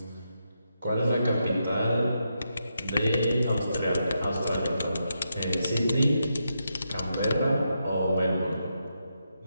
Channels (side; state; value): both; inverted; correlation -0.83